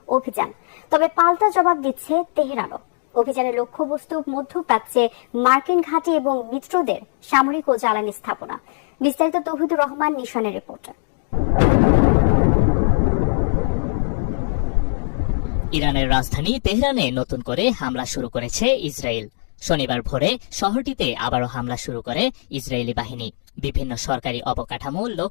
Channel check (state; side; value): silent; right; digital silence